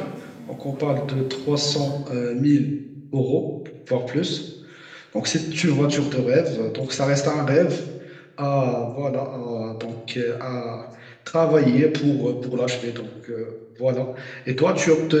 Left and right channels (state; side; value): identical; both; correlation 1.00